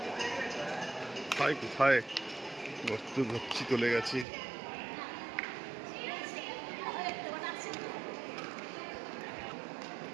কোথায় কোথায় গর্ত গচ্ছি চলে গেছে।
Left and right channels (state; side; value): drops out; left; at 4.2 s